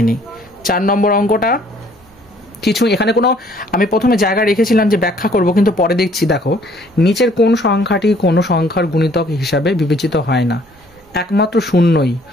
নিই। 4 নম্বর অঙ্কটা কিছু এখানে কোনো আমি প্রথমে জায়গা রেখেছিলাম যে ব্যাখ্যা করব, কিন্তু পরে দেখছি দেখো নিচের কোন সংখ্যাটি কোনো সংখ্যার গুণিতক হিসাবে বিবেচিত হয় না? একমাত্র শূন্যই।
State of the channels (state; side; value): normal; both; correlation 0.60